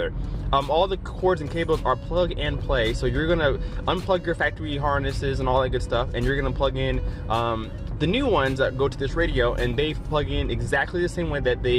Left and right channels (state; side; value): identical; both; correlation 1.00